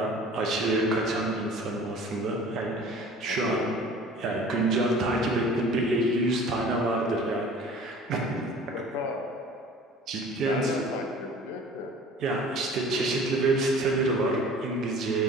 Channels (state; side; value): normal; both; correlation 0.45